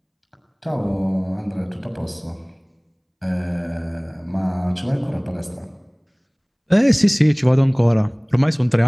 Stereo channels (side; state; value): both; identical; correlation 1.00